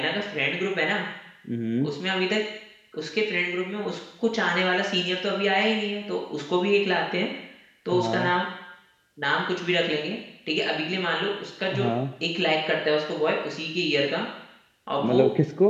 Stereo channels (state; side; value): identical; both; correlation 1.00